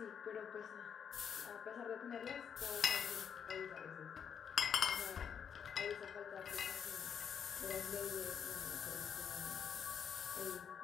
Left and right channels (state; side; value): quieter; right; 7.6 dB